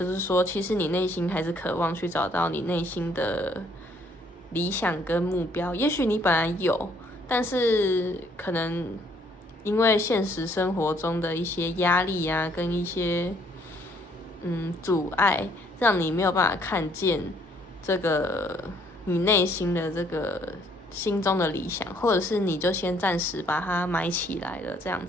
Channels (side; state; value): both; normal; correlation 0.65